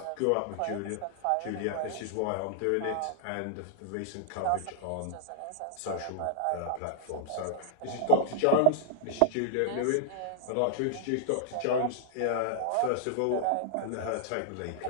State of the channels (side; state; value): both; different; correlation -0.01